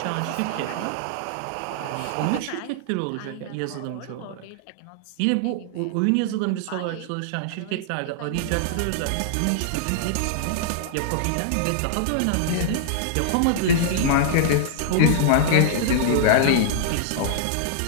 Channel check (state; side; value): different; both; correlation -0.01